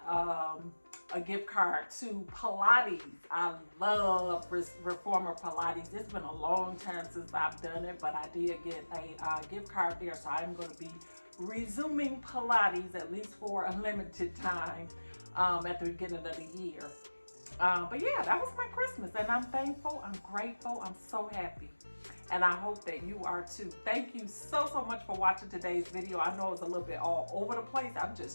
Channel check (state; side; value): inverted; both; correlation -1.00